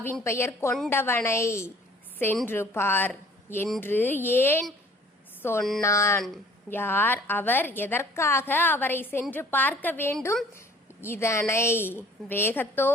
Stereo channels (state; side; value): normal; both; correlation 0.53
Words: பெயர் கொண்டவனை சென்று பார் என்று ஏன் சொன்னான்? யார் அவர்? எதற்காக அவரை சென்று பார்க்க வேண்டும்? இதனை